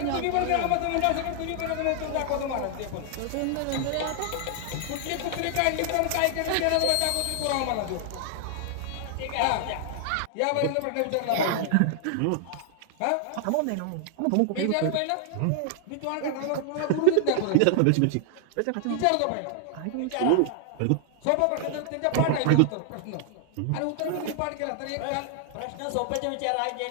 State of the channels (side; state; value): both; different; correlation 0.00